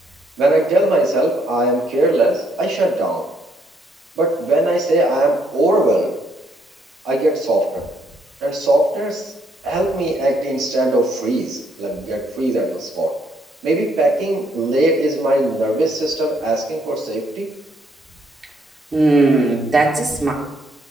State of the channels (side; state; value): both; normal; correlation 0.71